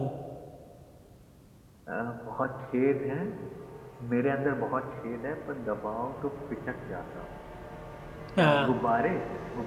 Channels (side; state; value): both; identical; correlation 1.00